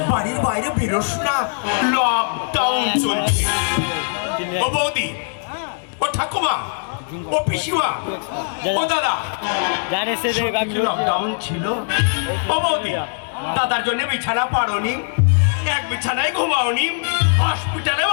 বাড়ির বাইরে বেরোস না, লকডাউন চলছে। ও বৌদি, ও ঠাকুমা, ও পিসিমা, ও দাদা, লকডাউন ছিল। ও বৌদি, দাদার জন্য বিছানা পারোনি, এক বিছানায় ঘুমাওনি, হসপিটালে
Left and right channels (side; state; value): right; silent; digital silence